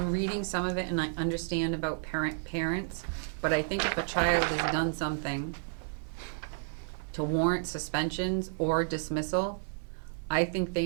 reading some of it and I understand about parents, but I think if a child has done something to warrant suspensions or dismissal, I think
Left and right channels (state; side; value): silent; left; digital silence